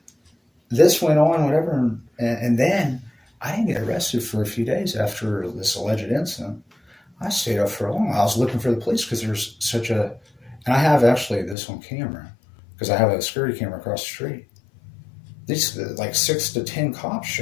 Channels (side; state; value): right; drops out; at 11.6 s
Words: This went on, whatever. And then I didn't get arrested for a few days after this alleged incident. I stayed up for a long while. I was looking for the police because there's such a... And I have actually this on camera because I have a security camera across the street. These like 6 to 10 cops